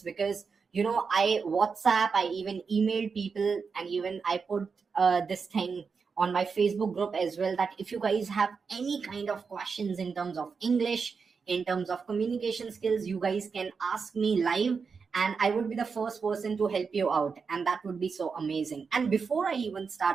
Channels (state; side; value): quieter; left; 5.4 dB